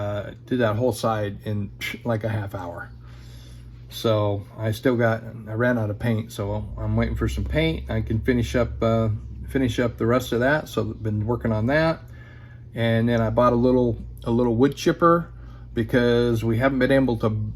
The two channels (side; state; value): both; identical; correlation 1.00